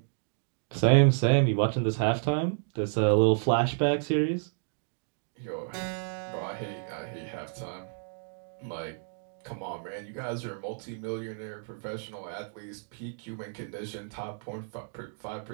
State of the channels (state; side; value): silent; left; digital silence